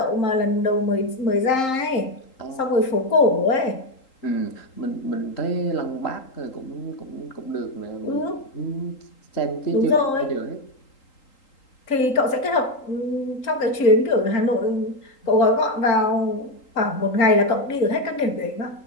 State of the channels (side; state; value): right; late; 3.8 ms